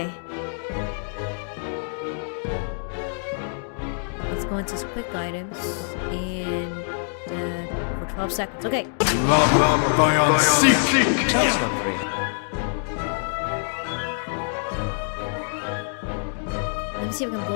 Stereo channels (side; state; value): right; silent; digital silence